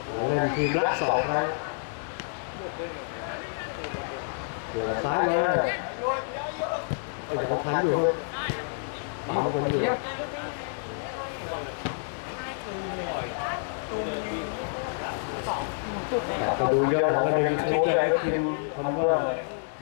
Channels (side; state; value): right; silent; digital silence